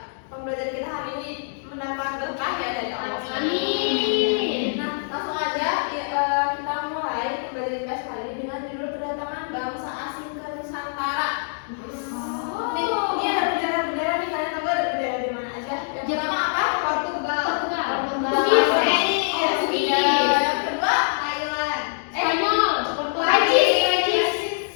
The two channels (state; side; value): silent; right; digital silence